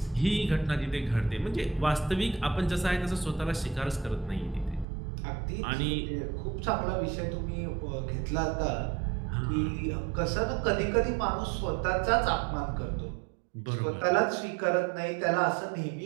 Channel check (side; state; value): left; drops out; at 4.9 s